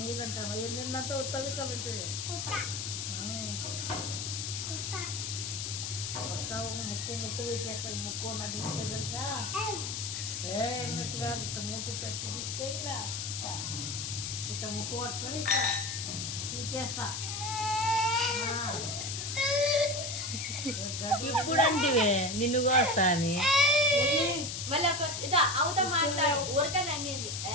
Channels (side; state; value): left; noise; hiss, 4 dB below the sound